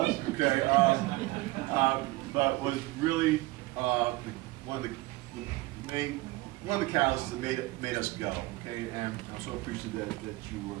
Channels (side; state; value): left; quieter; 20.5 dB